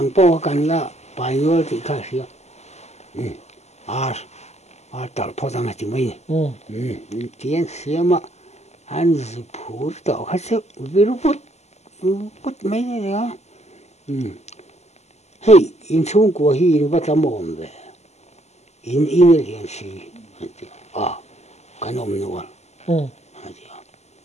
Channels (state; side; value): late; right; 0.32 ms